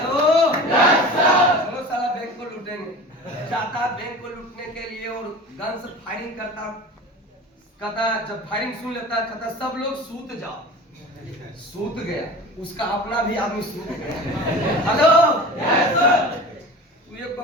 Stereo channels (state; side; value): normal; both; correlation 0.36